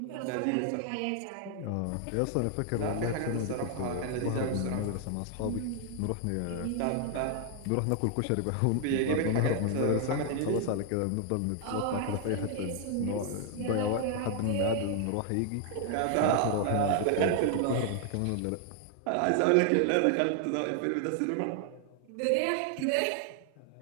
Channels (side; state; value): both; different; correlation 0.00